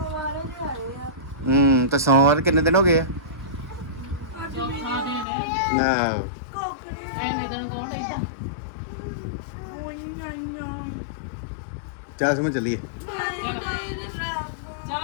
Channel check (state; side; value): drops out; right; at 5.2 s